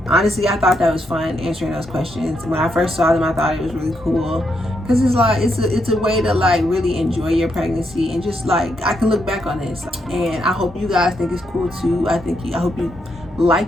Honestly, I thought that was fun, answering those questions. When I first saw them, I thought it was really cool, because it's like it's a way to like really enjoy your pregnancy, and just like I can look back on this, and I hope you guys think it's cool too. I hope you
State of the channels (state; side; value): normal; both; correlation 0.79